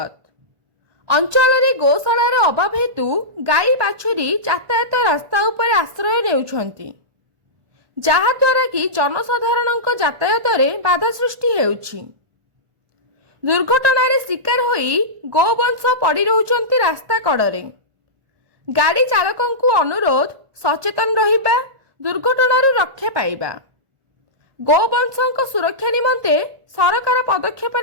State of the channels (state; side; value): late; left; 1.4 ms